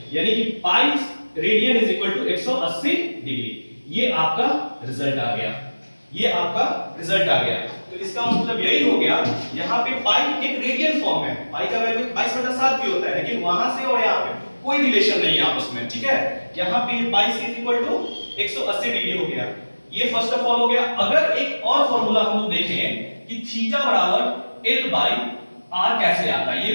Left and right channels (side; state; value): both; inverted; correlation -1.00